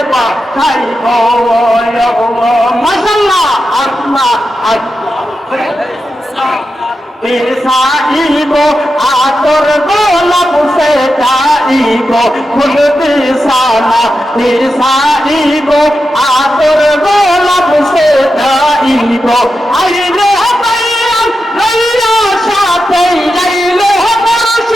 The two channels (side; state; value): both; normal; correlation 0.89